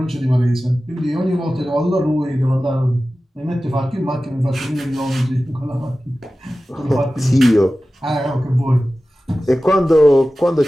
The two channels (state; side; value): normal; both; correlation 0.95